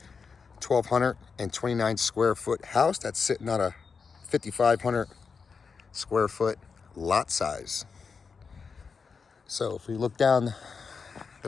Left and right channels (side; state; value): right; quieter; 5.4 dB